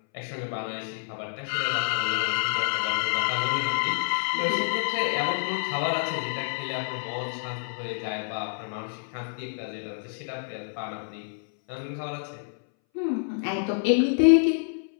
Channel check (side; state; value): right; silent; 60 dB below the other